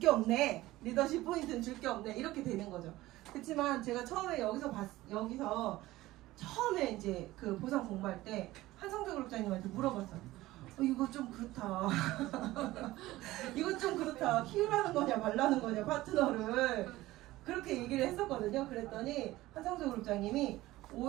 없네. 리더십 포인트는 줄 게 없네. 이렇게 되는 거죠. 그렇지만 제가 처음에 여기서 처음에 이제 그 보상 공부할 때 한성재 그룹장님한테 물어봤어요. 이거 좀 그렇다. 이거 좀 그렇다. 키우라는 거냐 말라는 거냐 파트너를. 그렇게 얘기를 했었거든요. 그랬더니 한성재 그룹장님이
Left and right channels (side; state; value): left; quieter; 17.3 dB